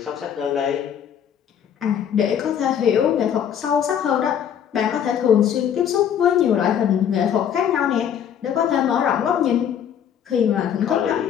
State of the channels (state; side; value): quieter; right; 8.9 dB